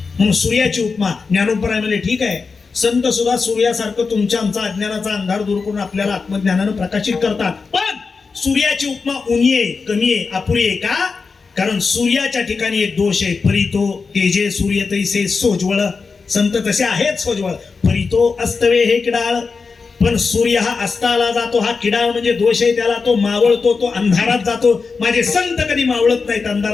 म्हणून सूर्याची उपमा ज्ञानोपराय म्हणजे ठीक आहे. संत सुद्धा सूर्यासारखं तुमच्या आमचा अज्ञानाचा अंधार दूर करून आपल्याला आत्मज्ञानानं प्रकाशित करतात. पण सूर्याची उपमा उणी आहे, कमी आहे, अपुरी आहे. का. कारण सूर्याच्या ठिकाणी एक दोष आहे. परितो तेजे सूर्य तैसे सोज्वळ. संत तसे आहेत सोज्वळ. परितो अस्तवे हे किडाळ. पण सूर्य हा अस्ताला जातो, हा किडाळ म्हणजे दोष आहे त्याला. तो मावळतो, तो अंधारात जातो. माझे संत कधी मावळत नाहीत,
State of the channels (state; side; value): quieter; right; 4.8 dB